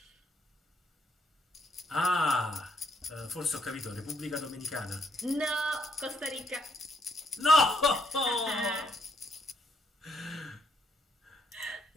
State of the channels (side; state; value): both; normal; correlation 0.73